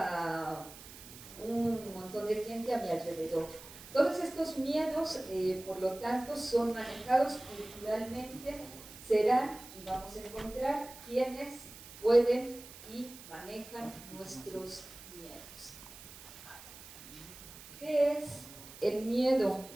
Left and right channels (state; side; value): noise; right; hiss, 16 dB below the sound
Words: un montón de gente a mi alrededor. Todos estos miedos, por lo tanto, son manejados culturalmente, serán, y vamos a encontrar, quienes pueden y manejan nuestros miedos. ¿Qué es el miedo?